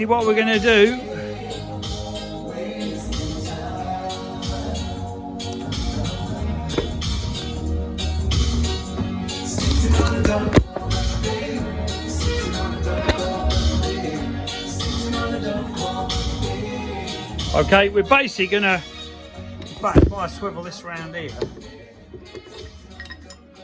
what we're going to do, okay, we're basically going to, in fact, if I swivel this around here,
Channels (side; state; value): both; identical; correlation 1.00